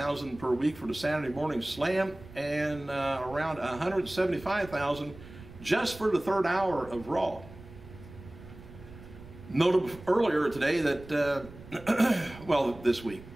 per week for the Saturday Morning Slam, and around $175,000 just for the third hour of Raw. Noted earlier today that, well, this week,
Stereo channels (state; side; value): noise; right; rumble, 17 dB below the sound